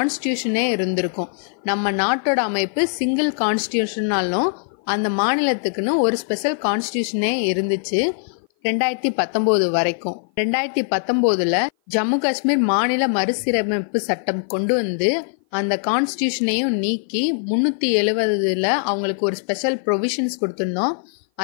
இருந்திருக்கும். நம்ம நாட்டோட அமைப்பு சிங்கிள் கான்ஸ்டியூஷனாலும் அந்த மாநிலத்துக்குன்னு ஒரு ஸ்பெஷல் கான்ஸ்டியூஷனே இருந்துச்சு 2019 வரைக்கும். 2019 ஜம்மு காஷ்மீர் மாநில மறுசீரமைப்பு சட்டம் கொண்டு வந்து அந்த கான்ஸ்டியூஷனையும் நீக்கி 370 அவங்களுக்கு ஒரு ஸ்பெஷல் ப்ரொவிஷன்ஸ் கொடுத்திருந்தோம்.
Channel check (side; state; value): right; silent; 57 dB below the other